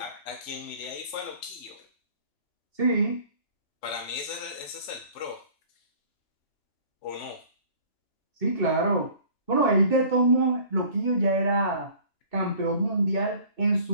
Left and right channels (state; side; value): late; right; 3.5 ms